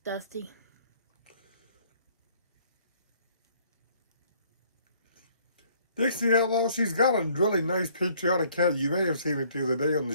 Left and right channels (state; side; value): inverted; both; correlation -0.61